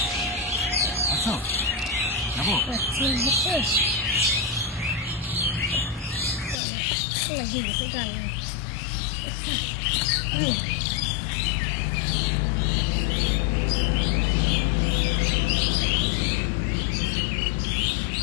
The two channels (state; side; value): drops out; right; at 6.6 s